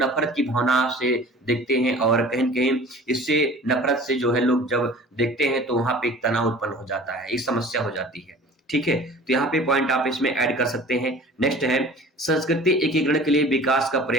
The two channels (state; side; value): normal; both; correlation 0.43